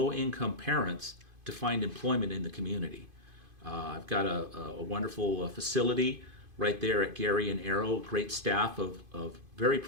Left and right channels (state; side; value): late; left; 2.5 ms